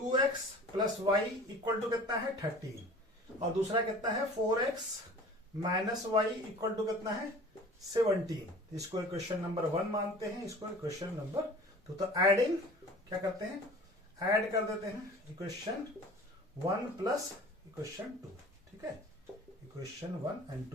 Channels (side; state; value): both; normal; correlation 0.43